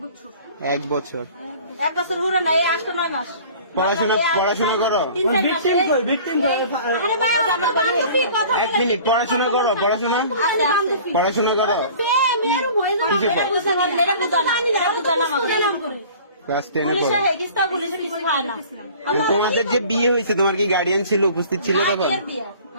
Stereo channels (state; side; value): inverted; both; correlation -0.46